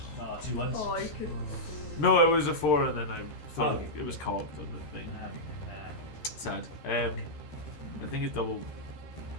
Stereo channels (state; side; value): late; right; 13 ms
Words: 2 ones. Oh, you could. No, it was a 4, and then I thought it was cocked on the thing. Sad. I think it's double